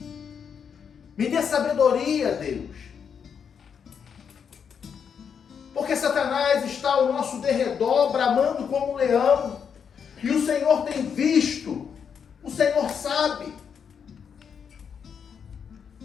Me dê sabedoria, Deus. Porque Satanás está ao nosso derredor, bramando como um leão. E o Senhor tem visto. O Senhor sabe.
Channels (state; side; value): quieter; right; 7.1 dB